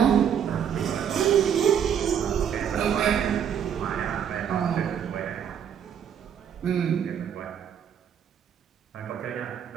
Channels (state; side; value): quieter; left; 8.5 dB